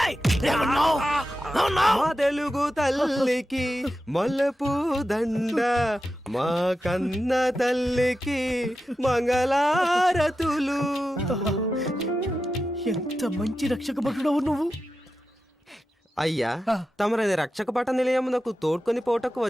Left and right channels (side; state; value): both; normal; correlation 0.91